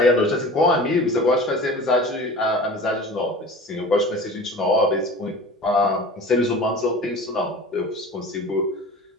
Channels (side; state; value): both; normal; correlation 0.39